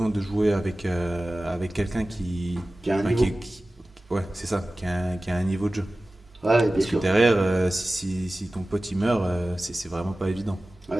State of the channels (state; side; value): normal; both; correlation 0.96